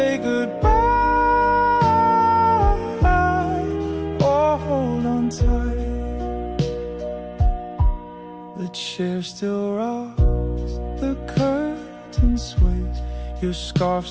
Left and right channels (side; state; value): both; identical; correlation 1.00